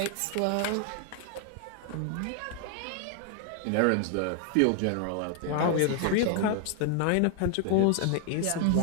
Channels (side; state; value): both; different; correlation 0.00